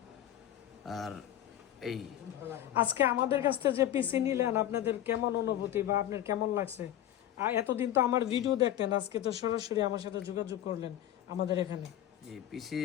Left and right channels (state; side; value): quieter; right; 12.0 dB